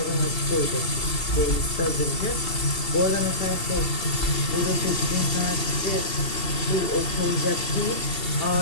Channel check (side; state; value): right; late; 2.7 ms